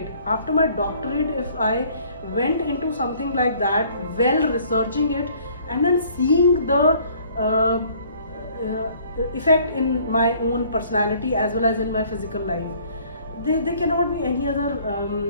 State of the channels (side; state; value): both; inverted; correlation -0.57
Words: after my doctorate, if I went into something like that, well researching it, and then seeing the effect in my own personality as well as in my physical life, there cannot be any